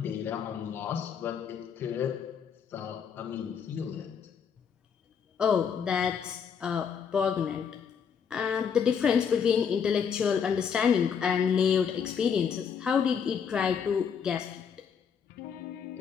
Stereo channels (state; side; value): quieter; right; 7.1 dB